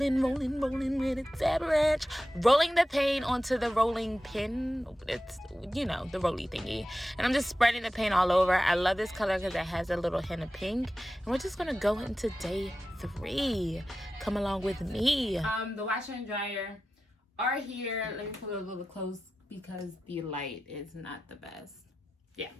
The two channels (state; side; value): normal; both; correlation 0.93